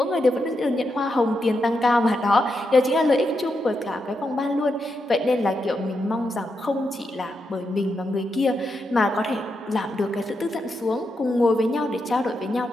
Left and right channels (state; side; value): normal; both; correlation 0.84